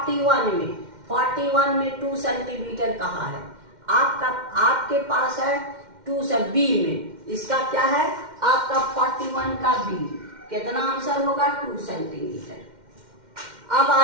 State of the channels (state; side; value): late; left; 2.1 ms